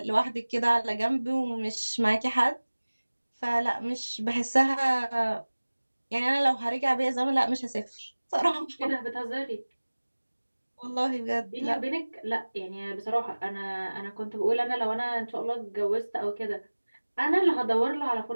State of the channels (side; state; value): both; inverted; correlation -1.00